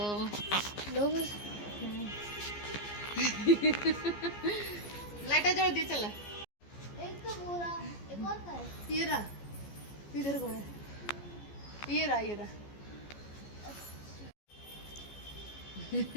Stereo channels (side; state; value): right; late; 14 ms